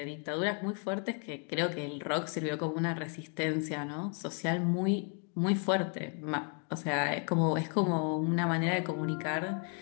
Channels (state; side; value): quieter; right; 39.1 dB